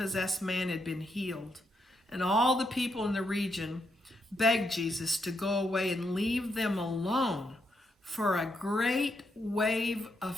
man had been healed. And all the people in the region begged Jesus to go away and leave them alone, for a great wave of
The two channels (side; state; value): both; normal; correlation 0.79